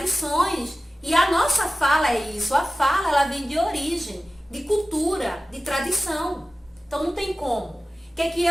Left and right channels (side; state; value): both; normal; correlation 0.95